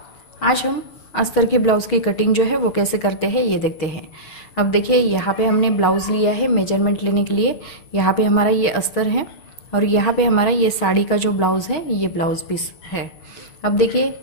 आज हम अस्तर के ब्लाउज़ की कटिंग जो है वो कैसे करते हैं ये देखते हैं। अब देखिए, यहाँ पे हमने ब्लाउज़ लिया है मेजरमेंट लेने के लिए। यहाँ पे हमारा ये अस्तर है और यहाँ पे हमारा ये साड़ी का जो ब्लाउज़ है ये ब्लाउज़ पीस है। अब देखिए,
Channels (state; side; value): late; right; 6.3 ms